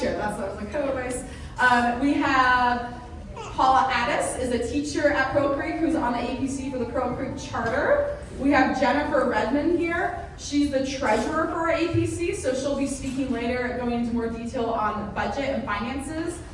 chair, that's what I was like, co-vice. We have Paula Addis is a teacher at Pearl Creek who's on the APC for the Pearl Creek Charter. We have Jennifer Redmond here. She's the treasurer for our APC, so she'll be speaking later, going into more detail on budget and finances.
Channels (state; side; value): identical; both; correlation 1.00